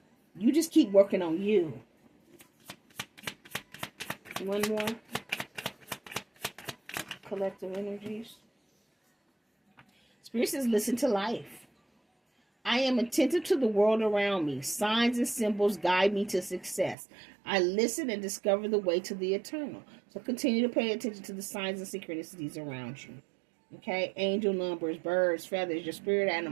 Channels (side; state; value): left; drops out; at 16.9 s